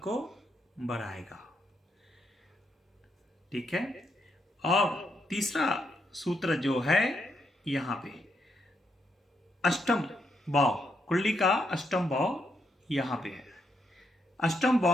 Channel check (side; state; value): both; normal; correlation 0.79